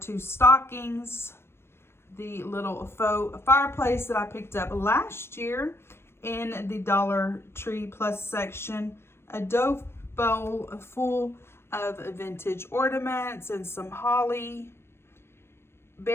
stockings. The little faux fireplace that I picked up last year in the Dollar Tree Plus section. A dough bowl full of vintage ornaments and some holly,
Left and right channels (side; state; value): right; late; 0.12 ms